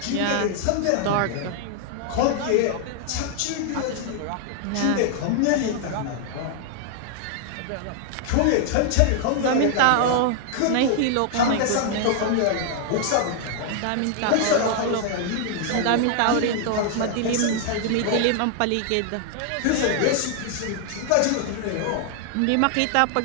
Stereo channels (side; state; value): both; different; correlation 0.00